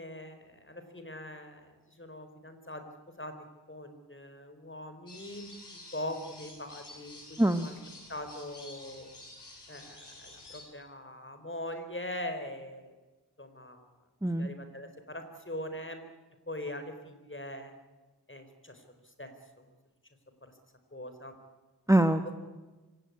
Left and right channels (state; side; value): normal; both; correlation 0.68